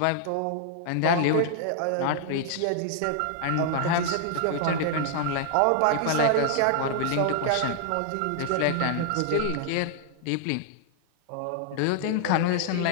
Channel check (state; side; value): different; both; correlation 0.00